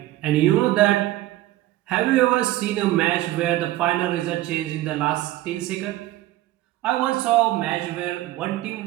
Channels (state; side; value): quieter; left; 16.0 dB